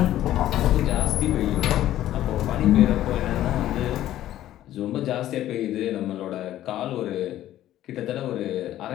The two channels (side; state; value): right; quieter; 13.2 dB